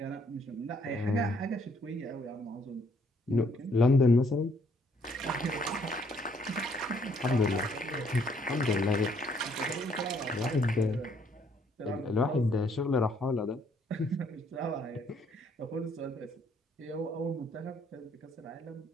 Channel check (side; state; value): both; normal; correlation 0.67